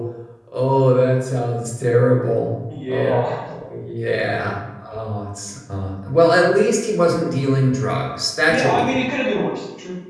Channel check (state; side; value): identical; both; correlation 1.00